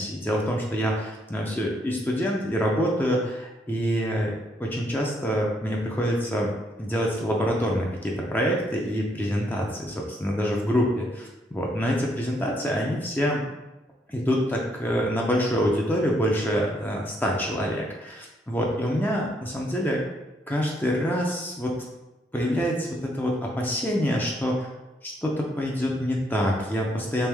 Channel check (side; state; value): both; normal; correlation 0.72